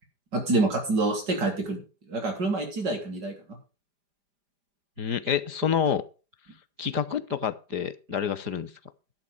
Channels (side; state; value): left; late; 5.0 ms